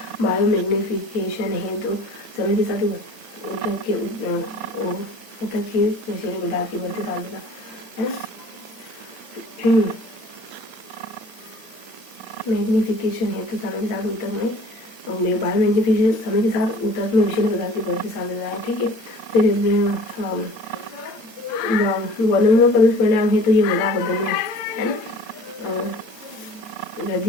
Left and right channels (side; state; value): right; late; 8.7 ms